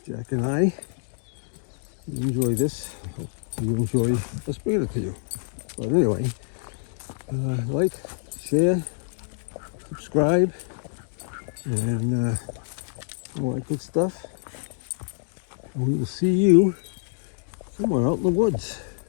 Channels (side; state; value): right; silent; digital silence